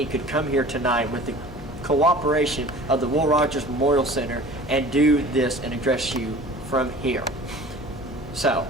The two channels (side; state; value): left; noise; hum, 14 dB below the sound